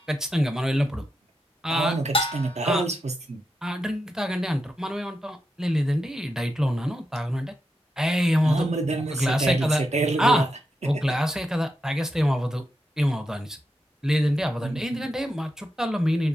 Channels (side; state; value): both; normal; correlation 0.86